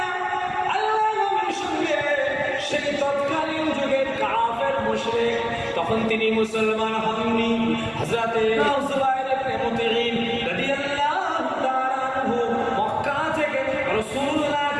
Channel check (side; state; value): both; identical; correlation 1.00